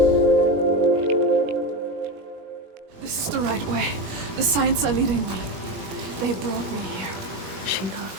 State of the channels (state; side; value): late; left; 21 ms